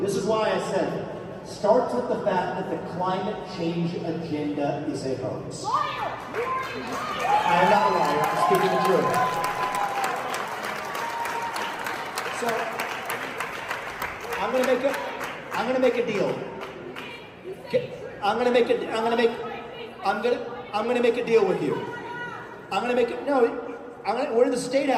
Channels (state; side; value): identical; both; correlation 1.00